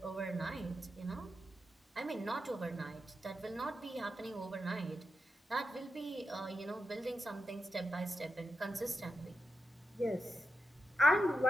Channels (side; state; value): both; normal; correlation 0.88